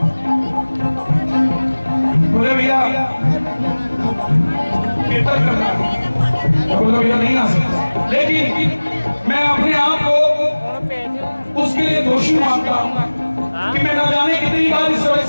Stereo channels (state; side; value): inverted; both; correlation -1.00